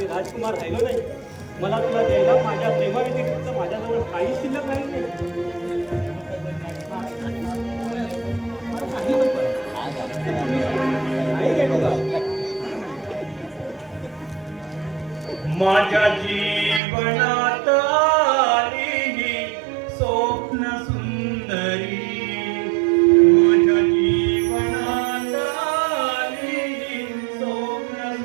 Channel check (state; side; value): drops out; left; at 16.8 s